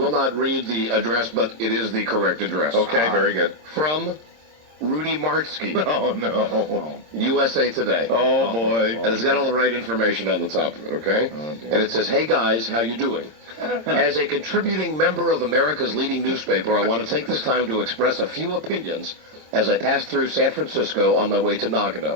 not read the address, but it is the correct address. Okay, very good. From Rudy Martsky. Oh, no. USA Today. Oh, boy. And it's got all the right information on the top of it, okay? Oh, dear. And it says, hey, guys, how you doing? As a contributing member of America's leading newspaper, I want to take this time to express a few opinions as I pass through San Francisco on my way to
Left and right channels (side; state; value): left; late; 26 ms